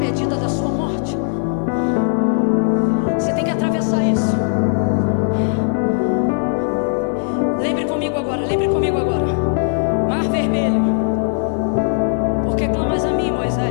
da sua morte. Você tem que atravessar isso. Lembre comigo agora, lembre comigo agora. Mar Vermelho. Por que clamas a mim,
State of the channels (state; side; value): silent; right; digital silence